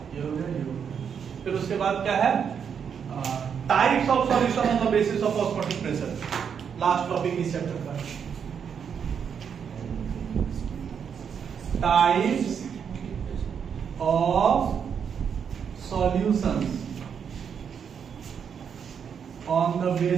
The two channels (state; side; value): quieter; left; 7.3 dB